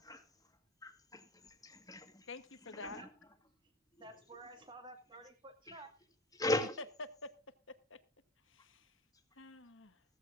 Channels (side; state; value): both; normal; correlation 0.33